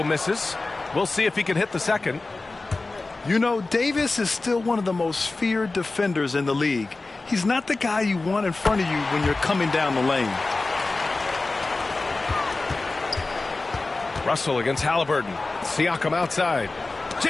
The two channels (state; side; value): quieter; right; 3.4 dB